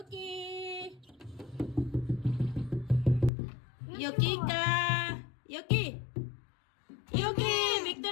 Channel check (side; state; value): right; drops out; at 3.3 s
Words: Yuki ka! Yuki! Yuki!